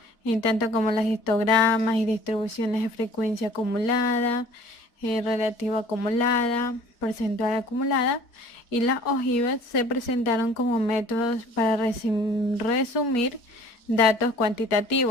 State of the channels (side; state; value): right; late; 4.3 ms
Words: en tanto como los histogramas y distribuciones de frecuencia acumulada, relativa acumulada, porcentual acumulada, y las ojivas se presentaron como métodos para resumir datos